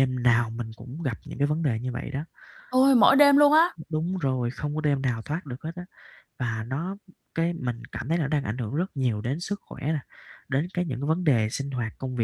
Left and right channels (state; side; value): identical; both; correlation 1.00